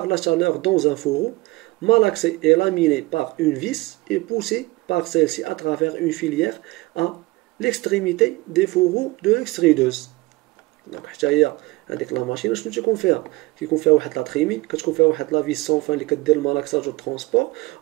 la chaleur dans un fourreau, malaxé et laminé par une vis et poussé par celle-ci à travers une filière à l'extrémité des fourreaux de l'extrudeuse. Donc حتى هي هذيك لا ماشين شنو تيكون فيها؟ كيكون فيها واحد لا تريمي، كتكون فيها واحد لا فيس سون فان اللي كدير المالاكساج والترونسبور،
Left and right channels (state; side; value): quieter; left; 22.1 dB